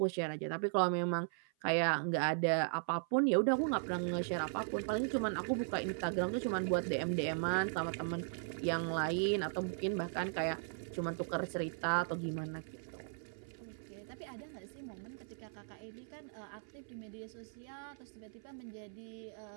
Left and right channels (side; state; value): left; silent; 52 dB below the other